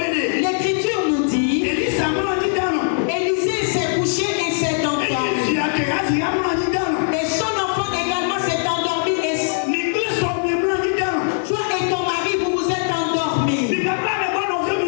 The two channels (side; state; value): right; silent; digital silence